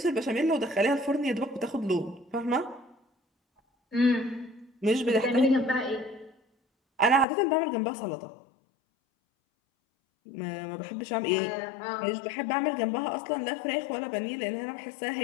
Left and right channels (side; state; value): right; drops out; at 7.2 s